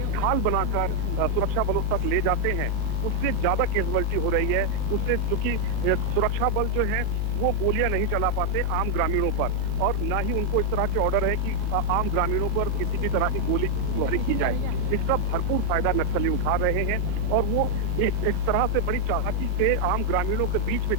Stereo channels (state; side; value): late; right; 11 ms